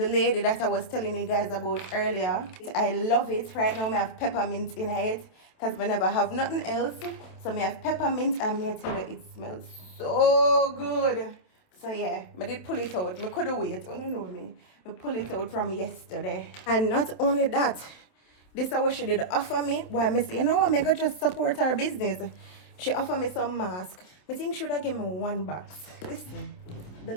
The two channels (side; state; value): right; late; 27 ms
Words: lady that I was telling you guys about earlier. I love it. Right now I have peppermint in it because I never have nothing else. So I have peppermint and I tell you it smells so good. So yeah, I did pull it out. I couldn't wait. Oh no me. I pull it out from yesterday. And not only that, this is what she did offer me. Why I say, you know what, I could just support her business. She offered me some mask. I think she would have given me 1 box. Listen, the